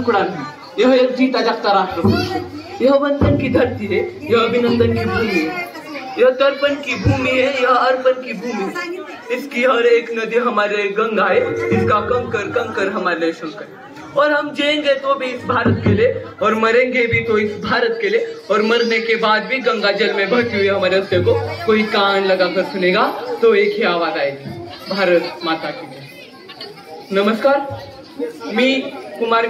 नहीं, यह एक जीता जागता राष्ट्र पुरुष है। यह वंदन की धरती है, यह अभिनंदन की भूमि है, यह तर्पण की भूमि है, यह अर्पण की भूमि है। इसकी हर एक नदी हमारे गंगा है, इसका कंकर कंकर हमारे शंकर। और हम जिएंगे तो भी इस भारत के लिए, और मरेंगे भी तो इस भारत के लिए, और मरने के बाद भी गंगा जल में बहती हुई हमारे रस्ते को कोई कान लगाकर सुनेगा तो एक ही आवाज आएगी, भारत माता की जय। नमस्कार, मी कुमार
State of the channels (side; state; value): both; identical; correlation 1.00